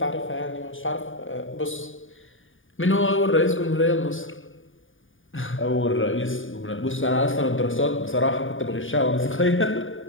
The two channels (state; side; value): late; right; 0.57 ms